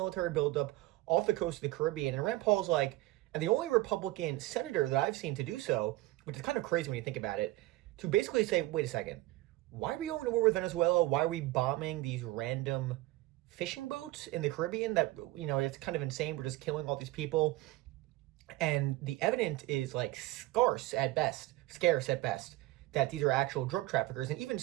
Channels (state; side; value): quieter; left; 18.2 dB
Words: buildup off the coast of the Caribbean. And Rand Paul's like, and the only Republican senator that I've seen to do so, which is kind of crazy when you think about it, to basically say, wait a second, why are we going to war with Venezuela? Why are we bombing these random fishing boats in the Caribbean? That, you know, it's kind of insane. We're just killing all these people. And the evidence is like scarce at best, that these are actual drug traffickers. And even